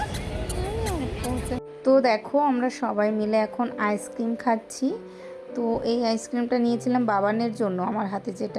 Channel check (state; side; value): identical; both; correlation 1.00